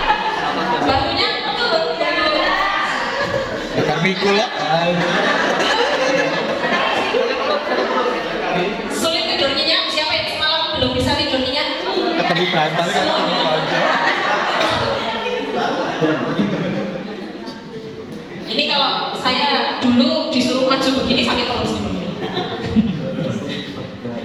Bahunya betul. Mikul lah. Sulit tidur nyenyak. Siapa yang semalam belum bisa tidur nyenyak? Ketemu bantal kan ketemu aja. Ini kalau saya dulu disuruh maju begini sakit terus.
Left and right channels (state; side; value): identical; both; correlation 1.00